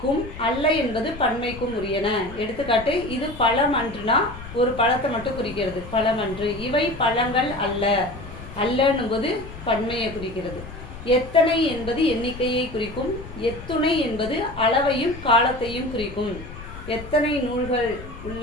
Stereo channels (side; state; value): left; noise; rumble, 13 dB below the sound